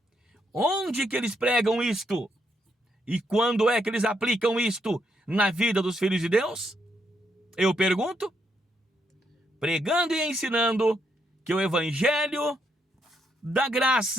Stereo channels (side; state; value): both; normal; correlation 0.77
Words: Onde que eles pregam isto? E quando é que eles aplicam isto na vida dos filhos de Deus? Eu pergunto. Pregando e ensinando que o evangelho da